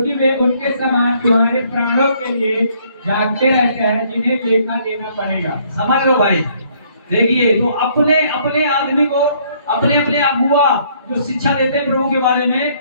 वे उनके समान तुम्हारे प्राणों के लिए जागते रहते हैं, जिन्हें लेखा देना पड़ेगा। समझ लो भाई। देखिए, तो अपने अपने आदमी को, अपने अपने अगुआ जो शिक्षा देते हैं प्रभु के बारे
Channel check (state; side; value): inverted; both; correlation -0.65